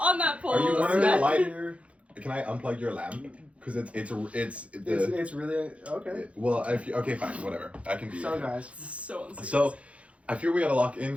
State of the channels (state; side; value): late; left; 0.063 ms